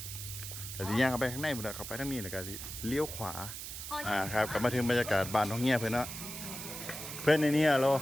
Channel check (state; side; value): noise; right; hiss, 8 dB below the sound